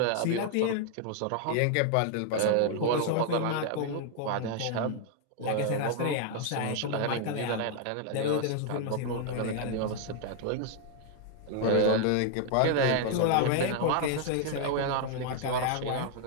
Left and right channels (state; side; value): different; both; correlation 0.00